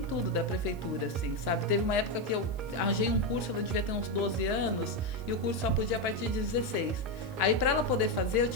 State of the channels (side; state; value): left; noise; hiss, 28 dB below the sound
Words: tudo da prefeitura, assim, sabe? Teve uma época que eu arranjei um curso, ela devia ter uns 12 anos, e o curso só podia a partir de 16. Aí, para ela poder fazer, eu